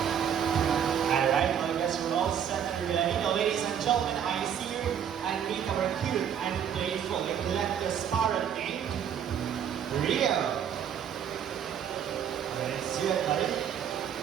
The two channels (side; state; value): left; quieter; 8.7 dB